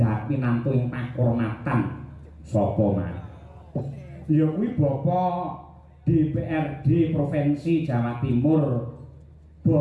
dhat pinantu ing pakurmatan. Sapa Mas? Ya kuwi Bapak DPRD Provinsi Jawa Timur,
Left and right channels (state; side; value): identical; both; correlation 1.00